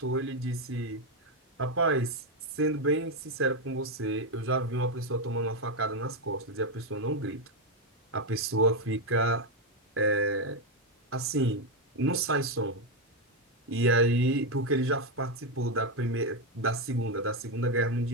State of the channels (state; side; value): normal; both; correlation 0.05